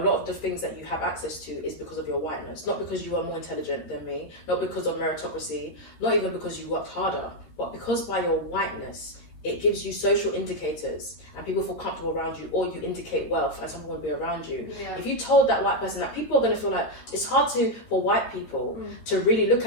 of the things that you have access to is because of your whiteness, not because you are more intelligent than me, not because of meritocracy, not even because you worked harder, but because by your whiteness, it gives you social indicators and people feel comfortable around you, or you indicate wealth and someone will be around you. Yeah. If you told that white person that, people are going to feel like it's hard for white people to really look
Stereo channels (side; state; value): right; late; 13 ms